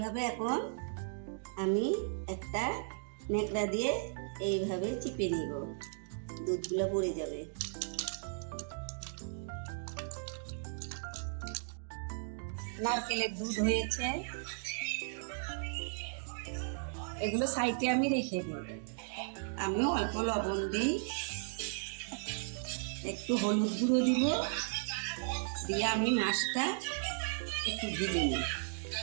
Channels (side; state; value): left; silent; digital silence